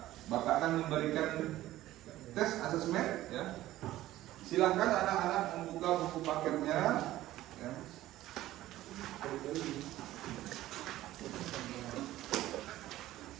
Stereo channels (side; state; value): left; quieter; 15.1 dB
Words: Bapak akan memberikan tes asesmen ya. Silakan anak-anak membuka buku paketnya ya.